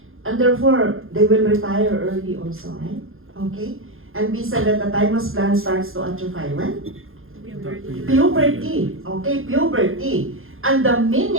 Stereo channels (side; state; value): left; late; 0.60 ms